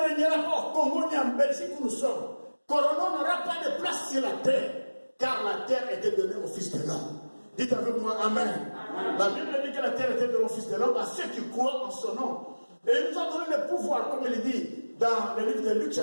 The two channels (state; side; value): inverted; both; correlation -1.00